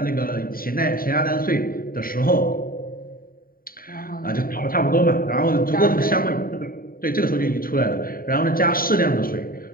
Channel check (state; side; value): late; right; 0.42 ms